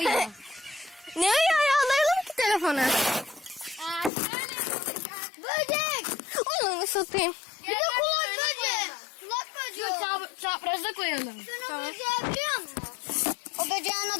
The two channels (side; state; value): right; drops out; at 4.1 s